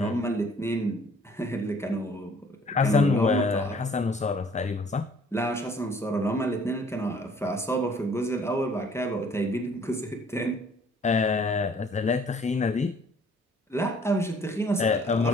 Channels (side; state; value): both; normal; correlation 0.57